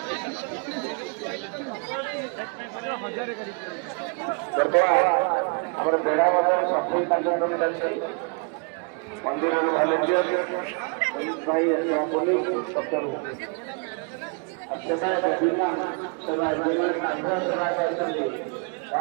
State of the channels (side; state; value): left; quieter; 37.2 dB